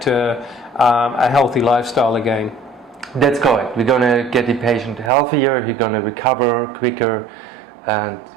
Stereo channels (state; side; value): drops out; left; at 5.1 s